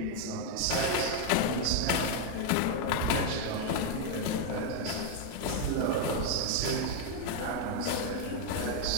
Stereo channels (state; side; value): different; both; correlation 0.00